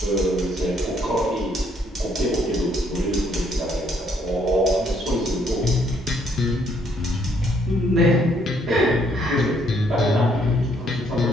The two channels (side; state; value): both; normal; correlation 0.68